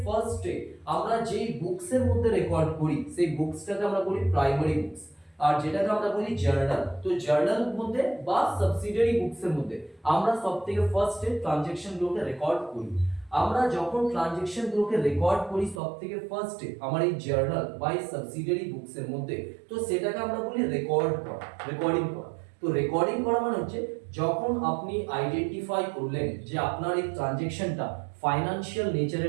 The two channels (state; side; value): drops out; left; at 15.8 s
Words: ফার্স্টে আমরা যেই বুকসের মধ্যে রেকর্ড করি সেই বুকসটাকে আমরা বলি প্রাইমারি বুকস, আর যেটাকে আমরা বলি জার্নাল। তো জার্নাল মধ্যে বা সাবসিডিয়ারি বুকসের মধ্যে আমরা সবথেকে ফার্স্টে ট্রানজ্যাকশন গুলোকে রেকর্ড করি। আমরা যখন ট্রানজ্যাকশন গুলোকে রেকর্ড করি সবথেকে ফার্স্টে আমার এই জার্নাল বা এই সাবসিডিয়ারি বুকস এর মধ্যে, তো সেটাকে আমরা বলি রেকর্ড করা, রেকর্ডিং করা। তো রেকর্ডিং করা মানে হচ্ছে যখন আপনি আইডেন্টিফাই করলেন যে আপনার এই ট্রানজ্যাকশনটা ফাইনান্সিয়াল